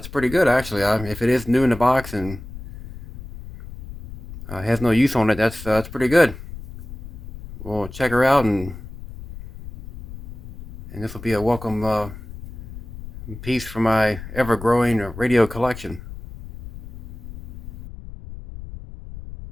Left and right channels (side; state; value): left; noise; rumble, 14 dB below the sound